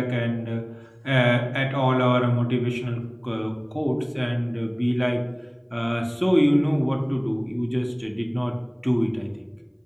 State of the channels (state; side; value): identical; both; correlation 1.00